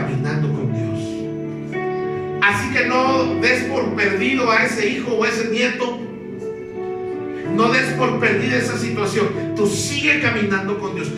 con Dios. Así que no des por perdido a ese hijo o a ese nieto, no des por perdida esa situación. Tú sigue caminando con Dios,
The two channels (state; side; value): identical; both; correlation 1.00